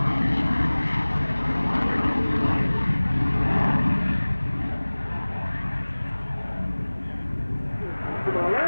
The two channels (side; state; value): both; inverted; correlation -1.00